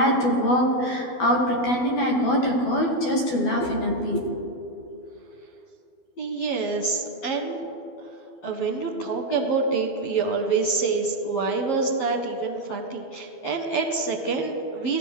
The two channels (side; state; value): right; late; 12 ms